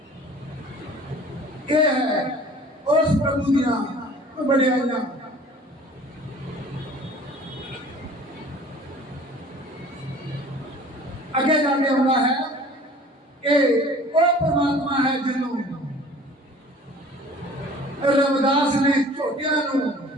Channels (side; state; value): both; normal; correlation 0.48